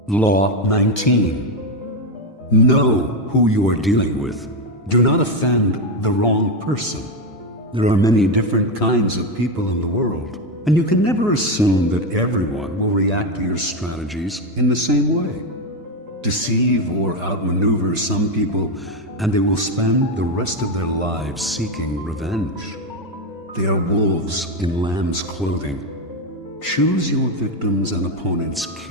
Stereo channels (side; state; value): both; normal; correlation 0.10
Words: Law 19. Know who you are dealing with. Do not offend the wrong person. There are many different kinds of people in the world, and you can never assume that everyone will react to your strategies in the same way. Deceive or outmaneuver some people, and they will spend the rest of their lives seeking revenge. They are wolves in lamb's clothing. Choose your victims and opponents